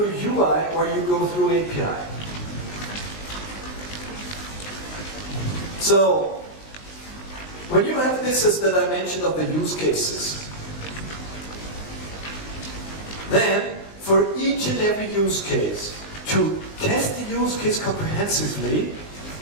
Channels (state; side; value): late; right; 19 ms